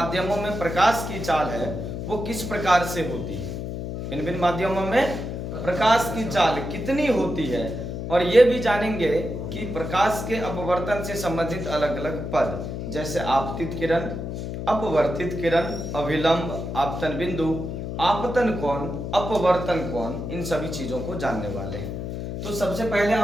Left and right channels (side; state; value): left; noise; hum, 5 dB below the sound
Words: में प्रकाश की चाल है वो किस प्रकार से होती है। भिन्न भिन्न माध्यमों में प्रकाश की चाल कितनी होती है, और ये भी जानेंगे कि प्रकाश के अपवर्तन से संबंधित अलग अलग पद, जैसे आपतित किरण, अपवर्तित किरण, अभिलंब, आपतन बिंदु, आपतन कोण, अपवर्तन कोण, इन सभी चीजों को जानने वाले हैं। तो सबसे पहले